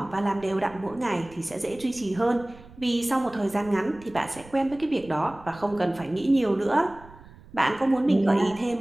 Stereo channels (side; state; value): right; noise; rumble, 21 dB below the sound